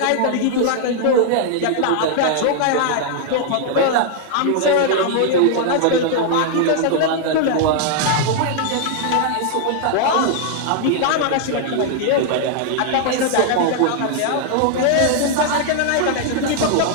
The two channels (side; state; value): both; different; correlation 0.00